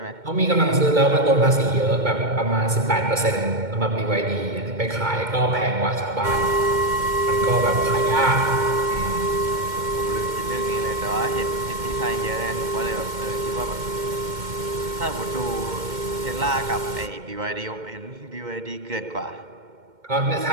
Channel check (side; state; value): left; late; 2.1 ms